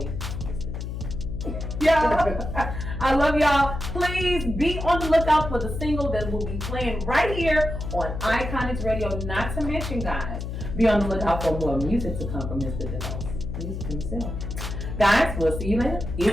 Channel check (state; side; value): noise; left; hum, 6 dB below the sound